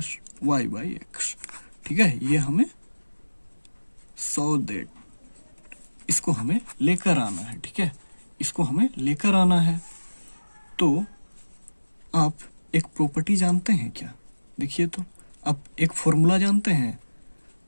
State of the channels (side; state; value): both; inverted; correlation -1.00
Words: y by x, ठीक है। ये हमें दैट इसको हमें लेकर आना है, ठीक है। इसको हमें लेकर आना है। तो आप एक प्रॉपर्टी जानते हैं क्या? देखिए तो आप एक फॉर्मूला जानते हैं,